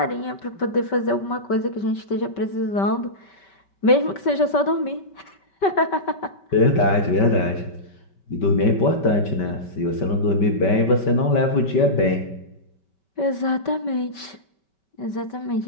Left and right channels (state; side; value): late; right; 5.2 ms